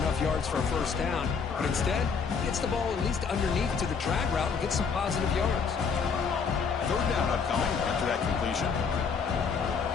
yards for a first down. But instead, he gets the ball at least underneath to the drag route and gets some positive yards. 3rd down upcoming after that completion.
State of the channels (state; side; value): quieter; right; 5.7 dB